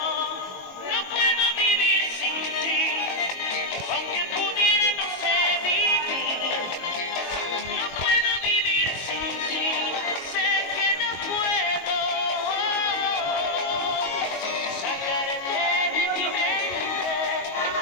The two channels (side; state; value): right; late; 22 ms